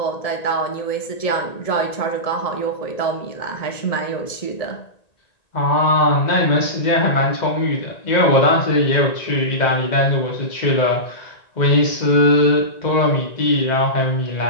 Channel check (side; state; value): right; late; 1.9 ms